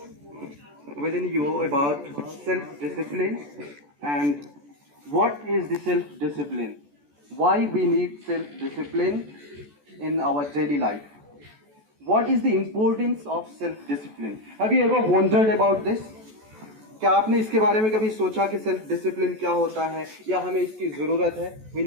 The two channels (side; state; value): left; late; 14 ms